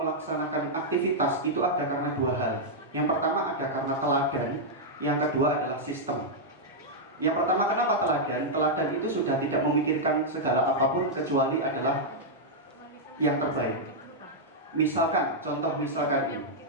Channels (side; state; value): both; normal; correlation -0.06